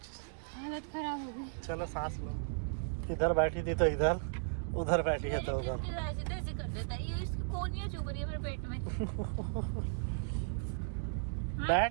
हालत खराब हो गई। चलो सांस लो। इधर बैठी थी तो इधर, उधर बैठी है तो उधर। ऐसे कर देता है, ये इसकी कोनियां चुभ रही है मेरे पेट में। हाँ?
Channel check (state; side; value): silent; left; digital silence